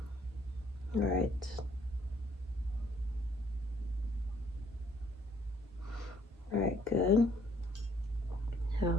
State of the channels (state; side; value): normal; both; correlation 0.64